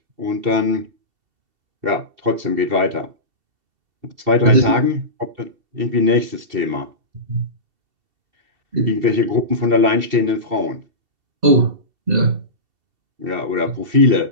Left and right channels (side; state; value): left; late; 2.7 ms